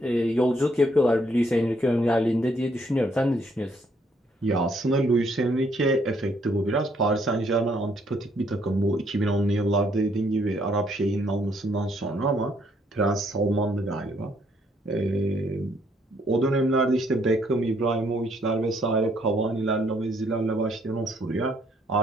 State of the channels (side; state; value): both; normal; correlation 0.69